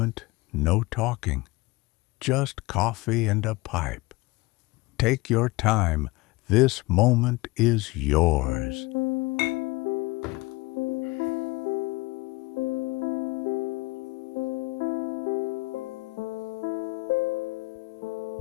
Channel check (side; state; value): right; quieter; 22.1 dB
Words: no talking, just coffee and a pipe. Take your time. This moment is yours.